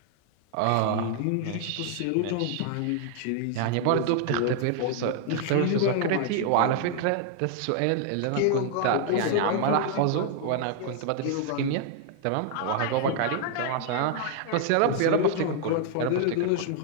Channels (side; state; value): both; different; correlation 0.00